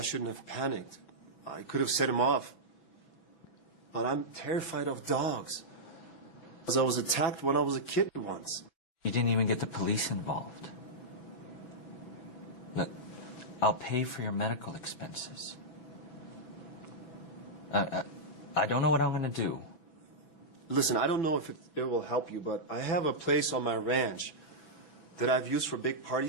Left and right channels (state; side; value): late; right; 6.0 ms